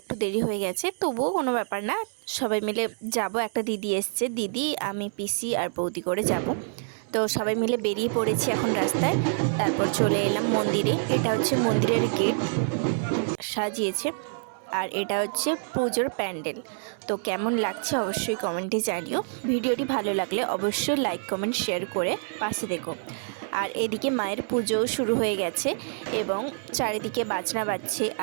দেরি হয়ে গেছে। তবুও কোনো ব্যাপার না, সবাই মিলে যাব। একটা দিদি এসছে, দিদি, আমি, পিসি আর বৌদি করে যাব। তো সবাই মিলে বেরিয়ে পড়েছি এখন রাস্তায়। তারপর চলে এলাম মন্দিরে। এটা হচ্ছে মন্দিরের গেট সাজিয়েছে, আর এটা হচ্ছে পুজোর প্যান্ডেল। তো কেমন লাগছে অবশ্যই কমেন্টে জানিও। ভিডিওটি ভালো লাগলে অবশ্যই লাইক কমেন্ট শেয়ার করে পাশে দেখো। আর এদিকে মায়ের পুজোও শুরু হয়ে গেছে এবং চারিদিকে বাজনা বাজছে।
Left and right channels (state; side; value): silent; left; 60 dB below the other